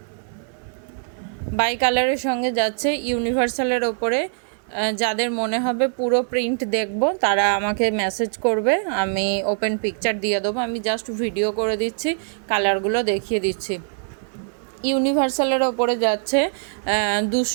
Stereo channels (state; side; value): silent; left; digital silence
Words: বাই কালারের সঙ্গে যাচ্ছে ইউনিভার্সালের ওপরে। যাদের মনে হবে পুরো প্রিন্ট দেখব তারা আমাকে মেসেজ করবে, আমি ওপেন পিকচার দিয়ে দেবো। আমি জাস্ট ভিডিও করে দিচ্ছি, কালারগুলো দেখিয়ে দিচ্ছি। ইউনিভার্সালের ওপরে যাচ্ছে